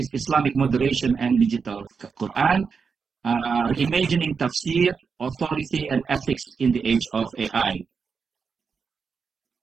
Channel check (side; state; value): left; quieter; 5.6 dB